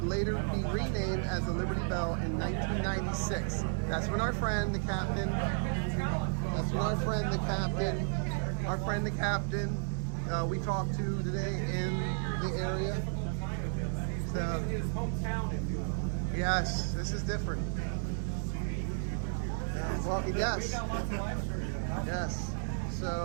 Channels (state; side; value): silent; left; digital silence